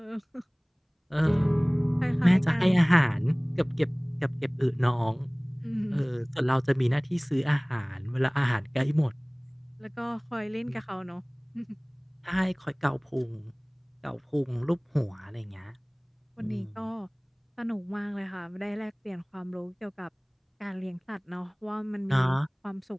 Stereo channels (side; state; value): both; identical; correlation 1.00